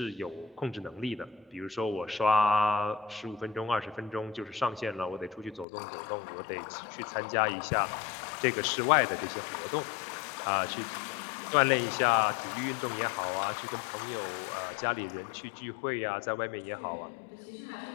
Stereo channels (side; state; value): right; drops out; at 5.7 s